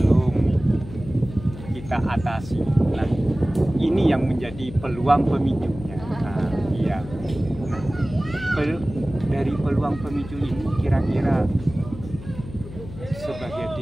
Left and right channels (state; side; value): noise; left; hum, 14 dB below the sound